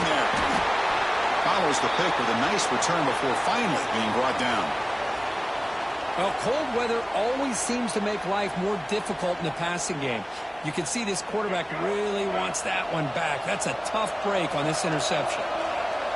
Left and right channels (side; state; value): both; identical; correlation 1.00